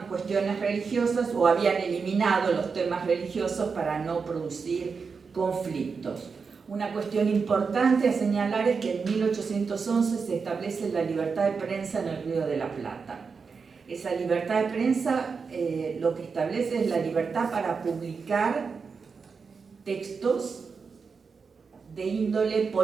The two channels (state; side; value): quieter; left; 5.2 dB